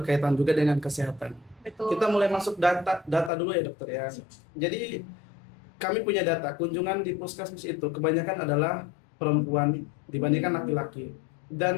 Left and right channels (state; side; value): drops out; right; at 3.3 s